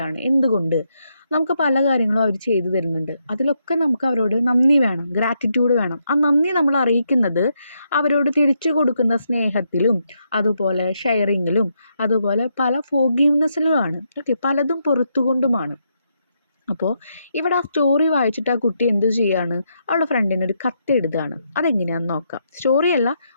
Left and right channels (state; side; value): inverted; both; correlation -0.79